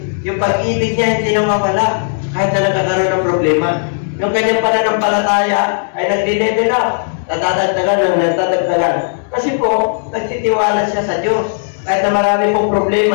Yung pag-ibig niya hindi nawawala kahit na nagkakaroon ng problema. Yung kanyang pananampalataya ay nagdi-level up. Nadadagdagan. Kasi po, nagtitiwala siya sa Diyos. Kahit na marami pong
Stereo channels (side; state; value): right; silent; 67 dB below the other